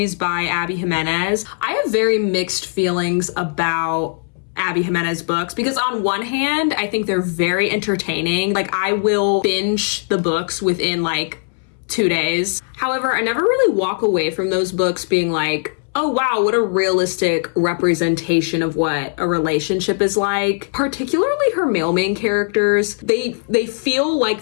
by Abby Jimenez. I have very mixed feelings about Abby Jimenez books because on one hand, I think they're very entertaining. Like I will binge the books within like 2 days. However, I never really walk away from those books being like, oh wow, what a realistic representation of what a relationship is like. Particularly her male main characters, they feel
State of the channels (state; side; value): silent; right; 66 dB below the other